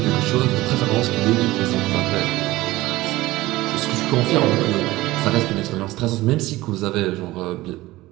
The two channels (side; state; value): left; quieter; 18.2 dB